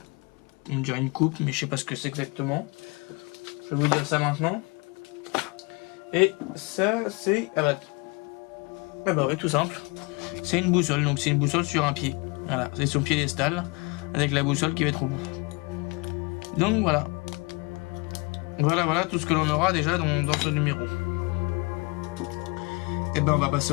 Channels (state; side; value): quieter; right; 28.5 dB